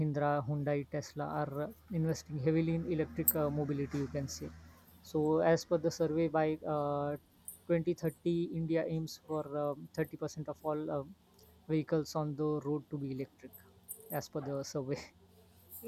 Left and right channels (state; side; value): identical; both; correlation 1.00